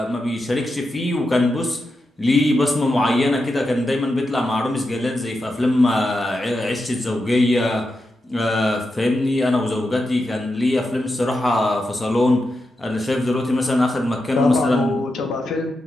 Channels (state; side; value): normal; both; correlation 0.88